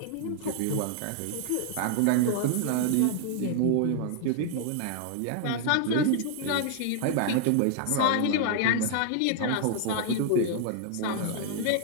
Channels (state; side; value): different; both; correlation 0.00